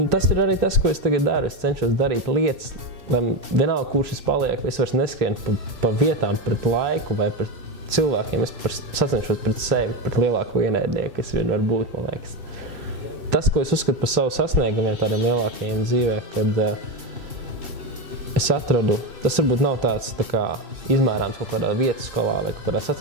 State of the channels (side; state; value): left; late; 2.8 ms